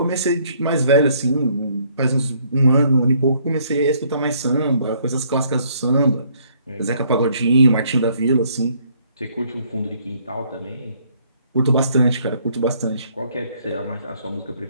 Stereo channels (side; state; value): both; inverted; correlation -0.65